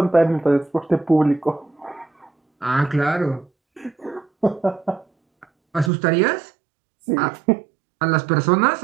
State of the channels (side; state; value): left; drops out; at 5.9 s